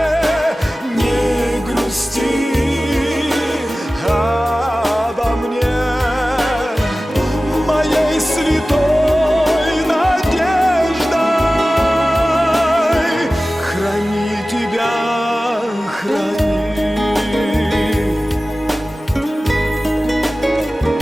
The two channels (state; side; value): normal; both; correlation 0.96